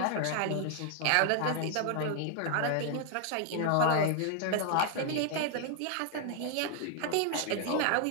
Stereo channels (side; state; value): both; different; correlation 0.00